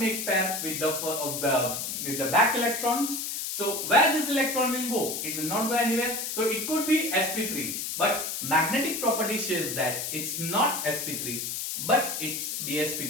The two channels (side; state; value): left; noise; hiss, 3 dB below the sound